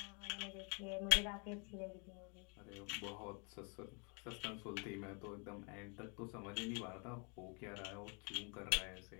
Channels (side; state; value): right; quieter; 35.8 dB